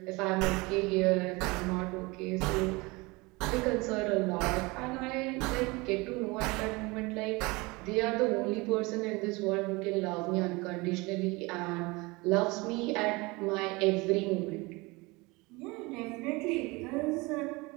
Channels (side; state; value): left; quieter; 24.5 dB